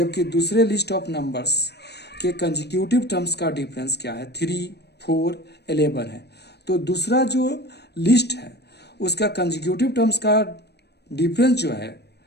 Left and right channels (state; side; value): late; right; 0.48 ms